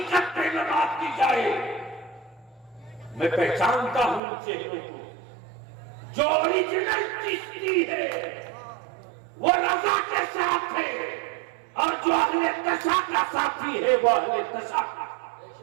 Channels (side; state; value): left; drops out; at 4.2 s